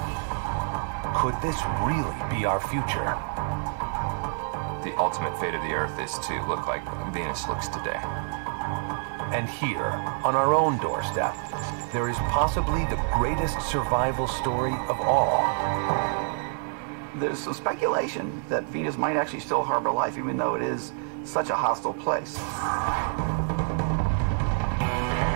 Could this really be our future? The ultimate fate of the Earth is to look like Venus looks today. And here, on our own doorstep, there is possibly the greatest survival story of all. There's some speculation that Venus might actually still harbor life, even though it is such a hostile place.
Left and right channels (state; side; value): silent; left; 60 dB below the other